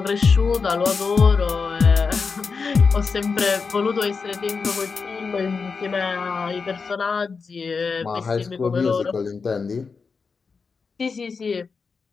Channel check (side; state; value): right; quieter; 5.0 dB